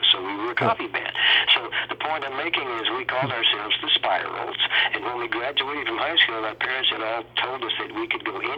So we were a copy band. So the point I'm making is we called ourselves the Spirals, and when we graduated from high school, our parents had all told us that we could go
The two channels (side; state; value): both; identical; correlation 1.00